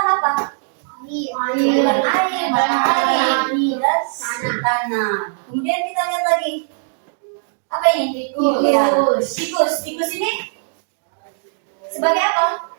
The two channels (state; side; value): silent; left; digital silence